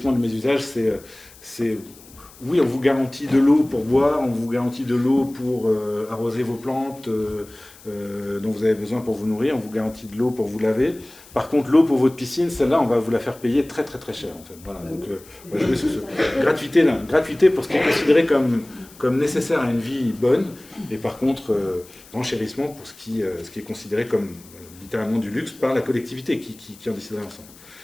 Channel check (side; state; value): left; noise; hiss, 23 dB below the sound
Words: du mésusage, c'est oui, on vous garantit de l'eau pour boire, on vous garantit de l'eau pour arroser vos plantes dont vous avez besoin pour vous nourrir, on vous garantit de l'eau pour vous laver. Par contre, l'eau pour votre piscine, celle-là, on va vous la faire payer très très très cher, en fait. Voilà, donc on va jouer sur ce gratuité pour ce qui est considéré comme nécessaire à une vie bonne, et par contre, renchérissement pour ce qui est considéré comme littéralement du luxe par la collectivité qui en déciderait ensemble.